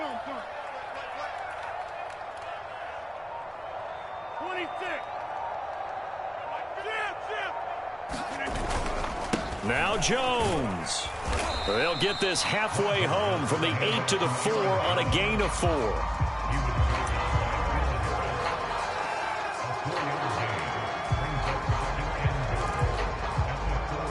Now Jones. They'll get this halfway home from the 8 to the 4 on a gain of 4.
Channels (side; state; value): both; identical; correlation 1.00